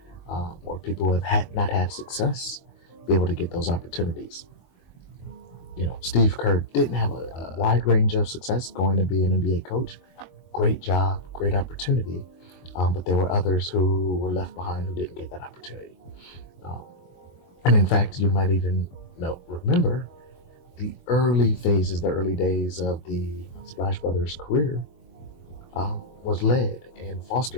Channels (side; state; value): right; late; 22 ms